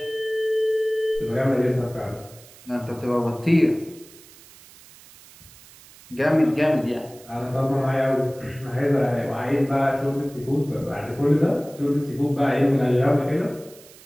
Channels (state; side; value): noise; right; hiss, 22 dB below the sound